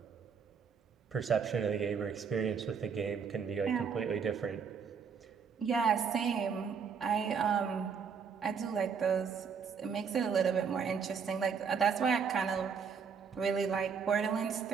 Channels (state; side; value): quieter; left; 6.3 dB